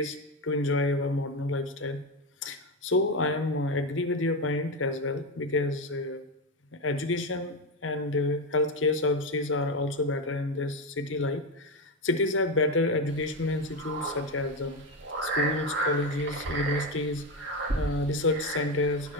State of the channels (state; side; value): normal; both; correlation 0.14